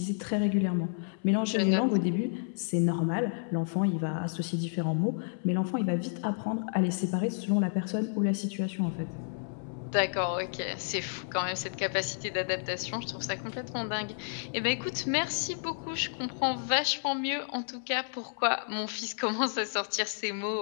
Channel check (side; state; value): right; silent; 57 dB below the other